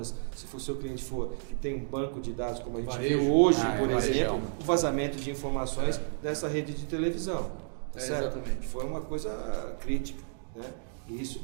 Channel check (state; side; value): silent; left; digital silence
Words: se o seu cliente for que tem um banco de dados como a gente vê hoje, por exemplo, o vazamento de informações dessa rede de televisão. Exatamente. Foi uma coisa crítica, né? E isso